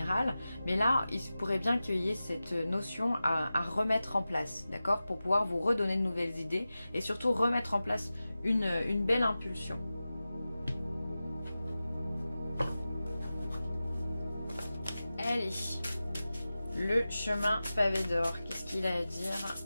mais là, il pourrait bien qu'il y ait cette notion à remettre en place, d'accord? Pour pouvoir vous redonner de nouvelles idées et surtout remettre en place une belle impulsion. Allez, le chemin pavé d'or, qu'est-ce qu'il a à dire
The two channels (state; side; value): inverted; both; correlation -0.95